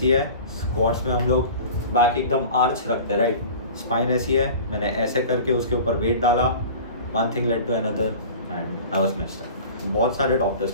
है, स्क्वाट्स में हम लोग बैक एकदम आर्च रखते हैं राइट. स्पाइन ऐसी है, मैंने ऐसे करके उसके ऊपर वेट डाला. One thing led to another and I was messed up. बहुत सारे डॉक्टर्स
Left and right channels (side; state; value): both; inverted; correlation -0.39